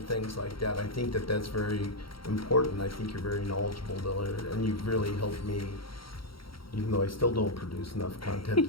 things like that. I think that's very important. I think you're very knowledgeable there, and you've really helped me, even though I still don't produce enough content.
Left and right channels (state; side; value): late; right; 0.74 ms